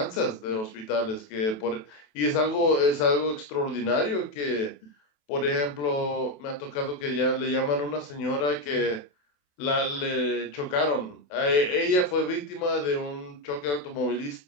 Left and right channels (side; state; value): right; late; 28 ms